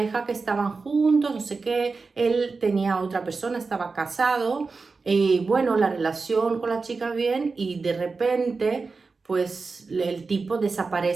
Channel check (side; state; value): left; quieter; 4.3 dB